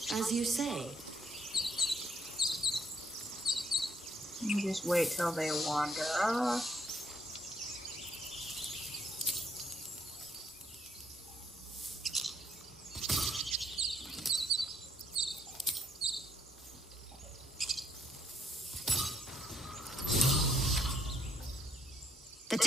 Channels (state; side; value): normal; both; correlation 0.71